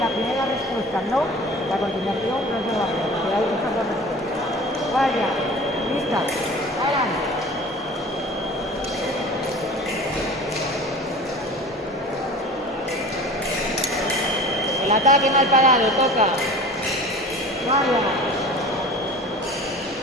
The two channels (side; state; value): both; normal; correlation 0.40